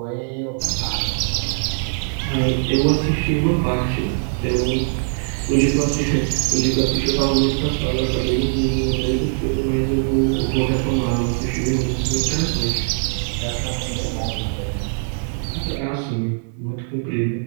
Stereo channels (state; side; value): silent; left; 58 dB below the other